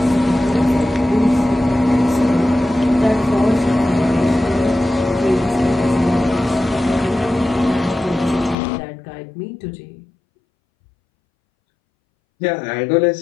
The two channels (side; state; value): right; drops out; at 8.6 s